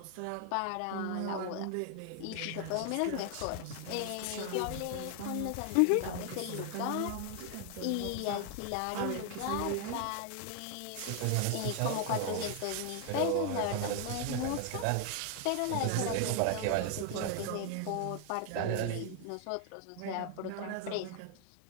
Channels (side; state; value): both; different; correlation 0.00